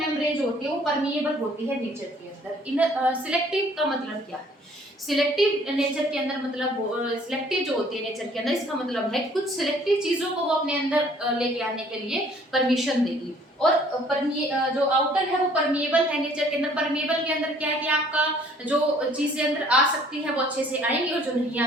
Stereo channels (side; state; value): both; normal; correlation 0.57